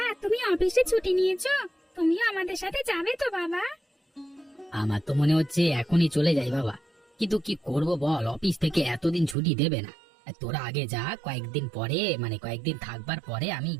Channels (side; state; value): left; drops out; at 9.3 s